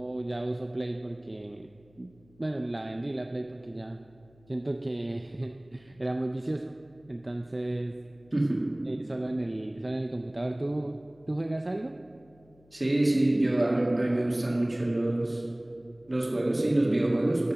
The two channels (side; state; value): left; noise; hum, 29 dB below the sound